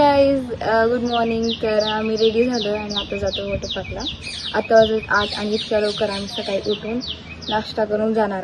गुड मॉर्निंग. तर आम्ही रेडी झालो आणि आता जातो वॉटर पार्कला. आता वाजत 8 आणि इतक्या लवकर आम्ही सकाळी उठून नाश्ता करून जाणार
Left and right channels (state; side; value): identical; both; correlation 1.00